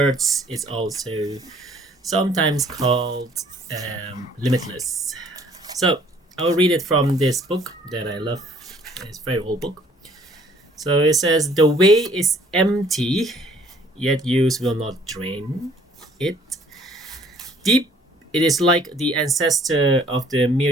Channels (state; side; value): normal; both; correlation 0.58